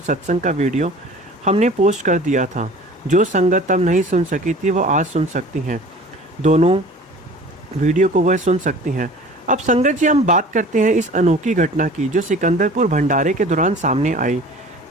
का वीडियो हमने पोस्ट कर दिया था। जो संगत तब नहीं सुन सकी थी वो आज सुन सकती हैं। दोनों वीडियो को वह सुन सकती हैं। अब संगत जी, हम बात करते हैं इस अनोखी घटना की जो सिकंदरपुर भंडारे के दौरान सामने आई।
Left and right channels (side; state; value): both; normal; correlation 0.44